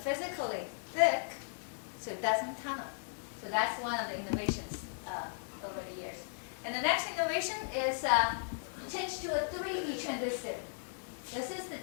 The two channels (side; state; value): right; silent; digital silence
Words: thick, so it doesn't tunnel. So that's one of the innovations over the years. And the next innovation is change to a 3D transistor. This is the